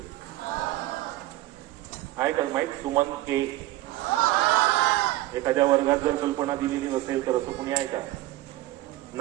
आहे का माहित सुमन के? एखाद्या वर्गात जर कल्पना दिलेली नसेल तर असं कुणी आहे का?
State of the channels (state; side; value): quieter; left; 16.6 dB